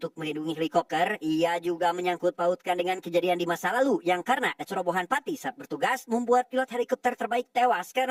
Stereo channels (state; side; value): identical; both; correlation 1.00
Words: melindungi helikopter. Ia juga menyangkut pautkan dengan kejadian di masa lalu yang karena kecerobohan Pati saat bertugas membuat pilot helikopter terbaik tewas